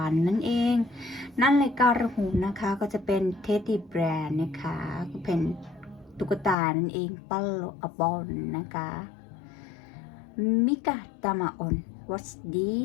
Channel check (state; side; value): drops out; right; at 6.6 s